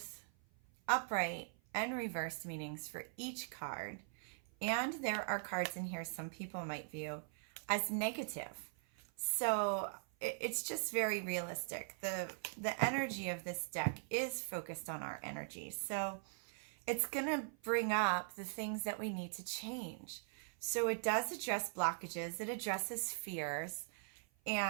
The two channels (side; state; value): left; silent; 50 dB below the other